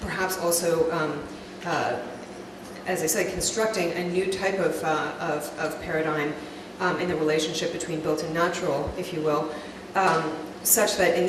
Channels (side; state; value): both; identical; correlation 1.00